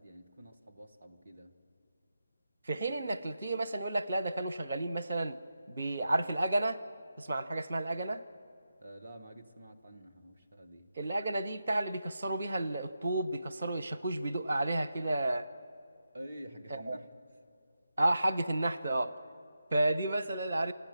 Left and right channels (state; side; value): inverted; both; correlation -0.88